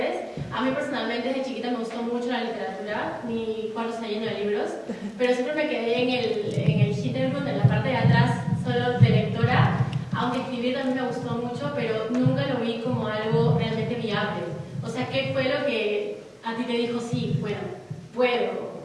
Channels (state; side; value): identical; both; correlation 1.00